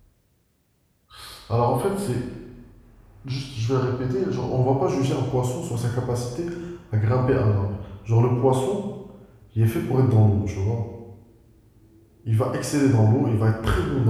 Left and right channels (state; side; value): identical; both; correlation 1.00